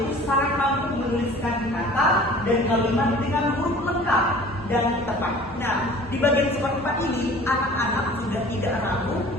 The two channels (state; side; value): normal; both; correlation 0.46